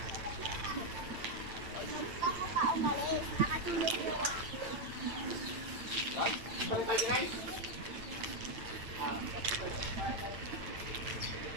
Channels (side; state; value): left; late; 8.9 ms